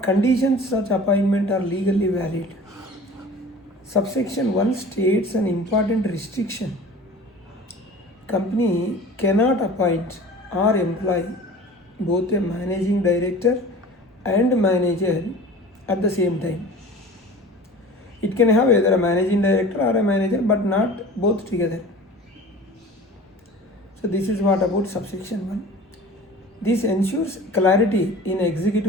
conditions such appointment are legally valid. Subsection 1 states an important restriction. Company cannot appoint or employ both a managing director and manager at the same time. It can have either a managing director or a manager, but not both together. So this is what about subsection 1. This ensures clarity in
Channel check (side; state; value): both; normal; correlation 0.41